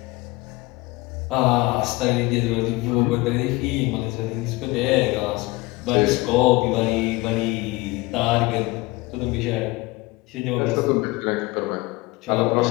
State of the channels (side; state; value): right; quieter; 22.3 dB